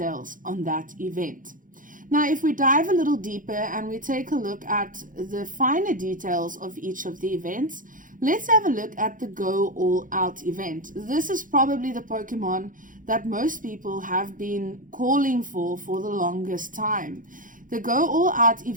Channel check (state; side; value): late; left; 0.39 ms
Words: on that event. Now, if we dive a little deeper and we take a look at the finer details of each of the events, let's have a look at the Go All Out event. This is probably the Pokemon that most people have been calling for the longest time. The Go All Out